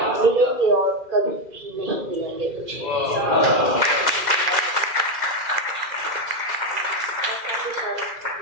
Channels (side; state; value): left; late; 2.1 ms